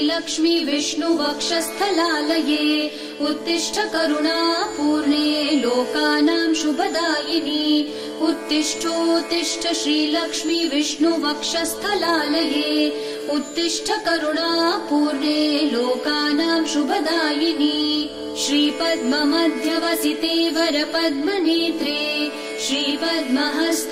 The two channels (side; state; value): both; identical; correlation 1.00